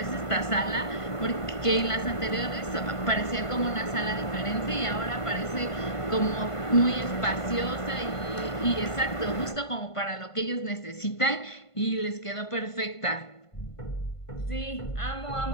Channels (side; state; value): right; late; 1.5 ms